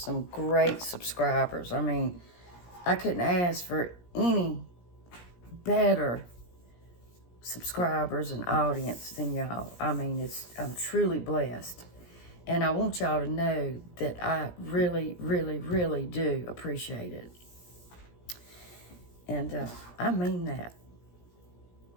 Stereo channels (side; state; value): right; late; 17 ms